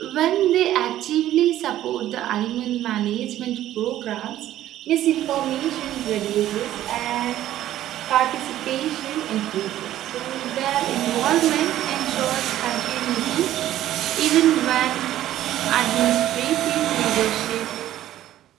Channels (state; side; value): quieter; left; 13.1 dB